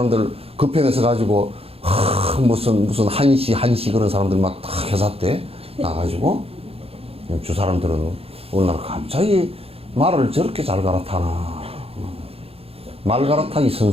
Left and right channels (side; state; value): left; late; 0.28 ms